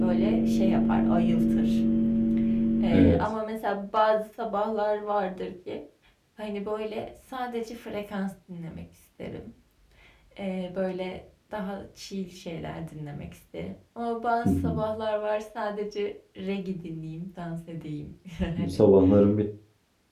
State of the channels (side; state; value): both; identical; correlation 1.00